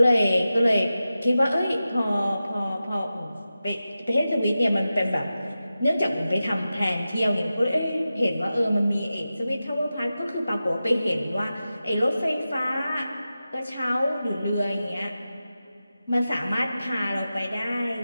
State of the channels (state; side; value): inverted; both; correlation -0.93